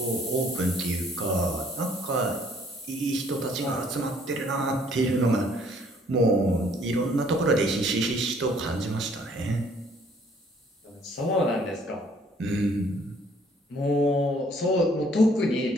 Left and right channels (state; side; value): normal; both; correlation 0.61